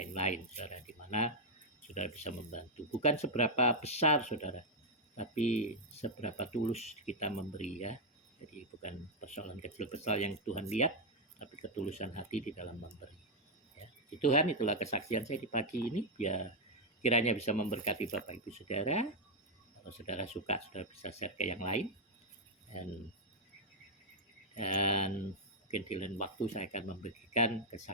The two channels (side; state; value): both; normal; correlation -0.01